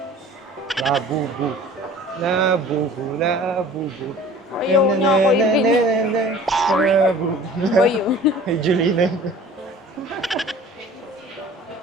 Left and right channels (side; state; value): both; normal; correlation 0.46